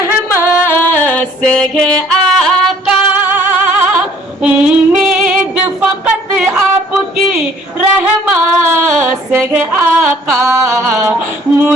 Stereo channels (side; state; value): both; normal; correlation 0.58